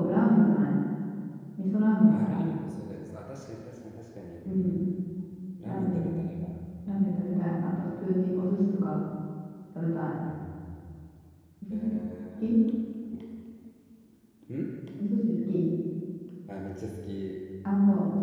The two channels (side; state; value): both; identical; correlation 1.00